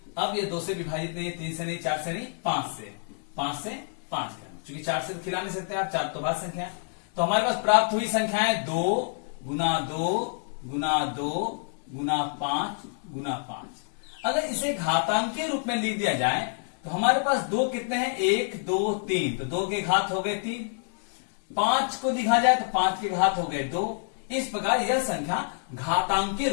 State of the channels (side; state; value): right; silent; 60 dB below the other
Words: अब ये 2 से विभाजित नहीं, 3 से नहीं, 4 से नहीं, 5 से 5 करना, क्योंकि 4 से तो खिला नहीं सकते आप, 4 तो भाज्य संख्या। तो हमारे पास प्राप्त हुई संख्याएं 2 गुना 2 गुना 2 गुना 5 गुना 5। अगर इसे घातांक के रूप में लिख दिया जाए तो हमारे पास 2 कितने हैं, 1 2 3, तो 2 के घात हो गए 3, 5 को लिखा जाए तो 5 के घात हो गए 2। इस प्रकार यह संख्या घातांक के